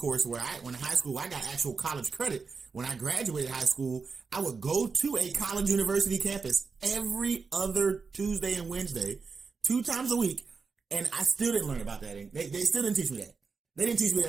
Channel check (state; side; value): quieter; left; 4.9 dB